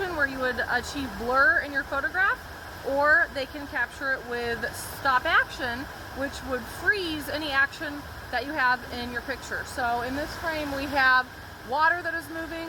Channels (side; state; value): both; identical; correlation 1.00